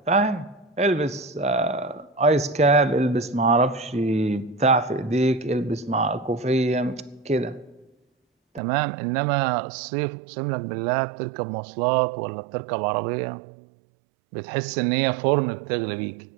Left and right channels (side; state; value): left; drops out; at 8.6 s